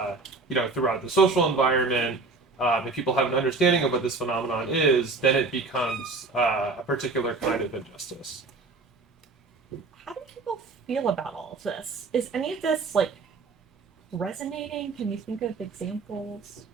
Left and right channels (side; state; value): left; quieter; 3.9 dB